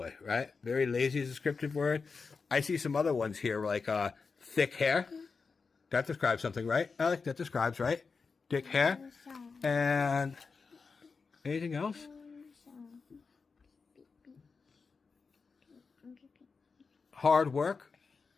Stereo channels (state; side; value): quieter; right; 4.8 dB